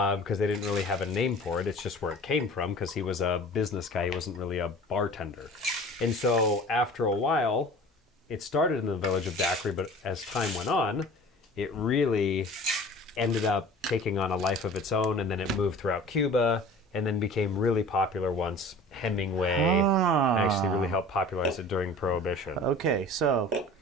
they didn't really have a name for it. It's just where it came from, because he was a business guy. He wasn't really a bartender. And so after a while, it started in the village of daiquiri, but as time went on, it really ended up taking on a life of its own, and then it moved throughout Cuba, and then became really popular once Hemingway actually really helped popularize it during Prohibition. Okay, so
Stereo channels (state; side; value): normal; both; correlation 0.42